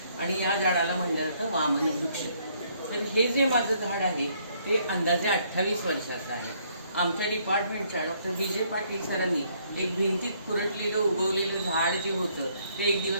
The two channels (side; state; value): both; inverted; correlation -0.68